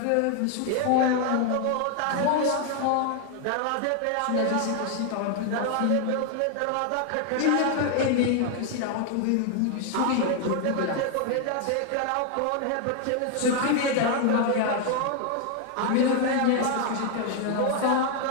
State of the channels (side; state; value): both; different; correlation 0.00